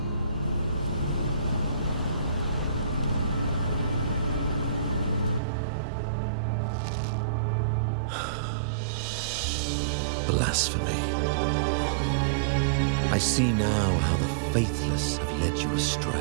Blasphemy. I see now how the faithless have led you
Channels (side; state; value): left; drops out; at 5.4 s